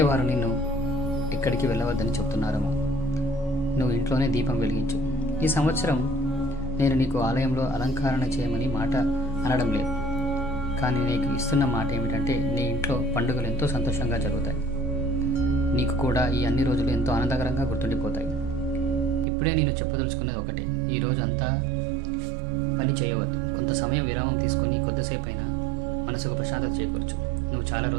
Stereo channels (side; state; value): left; drops out; at 19.2 s